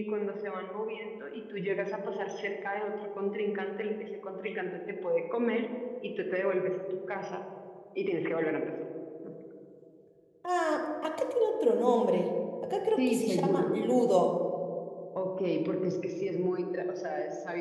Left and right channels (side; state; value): both; identical; correlation 1.00